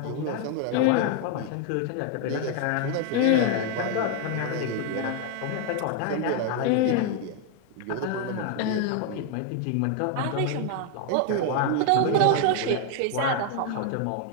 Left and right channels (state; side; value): different; both; correlation 0.00